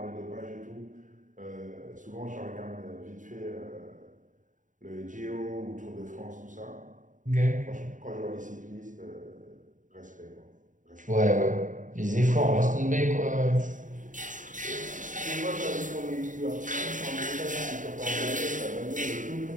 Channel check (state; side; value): late; left; 0.37 ms